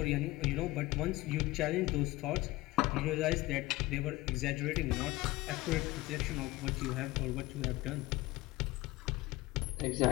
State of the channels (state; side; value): quieter; right; 19.3 dB